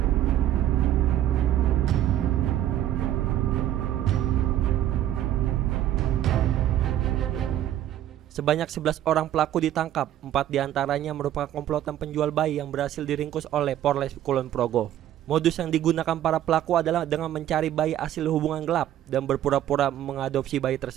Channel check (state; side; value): quieter; left; 12.2 dB